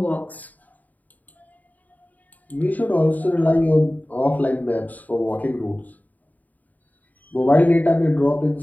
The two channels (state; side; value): late; right; 0.078 ms